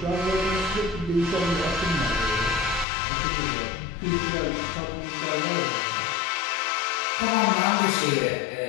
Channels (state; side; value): drops out; right; at 2.9 s